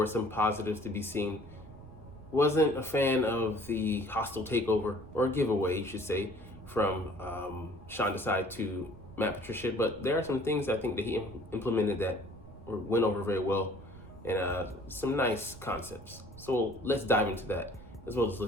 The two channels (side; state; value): right; noise; rumble, 18 dB below the sound